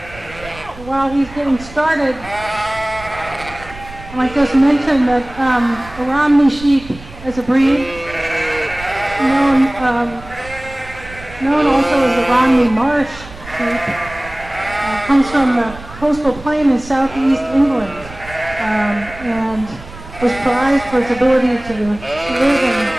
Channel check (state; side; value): noise; right; rumble, 17 dB below the sound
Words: While he's getting started, I might just mention that the Romney sheep as a breed, known also as the Romney Marsh sheep, comes from the coastal plain in southeast England, and was prized for its ability to live in